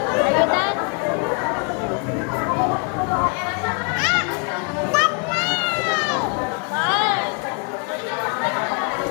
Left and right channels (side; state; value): right; quieter; 38.1 dB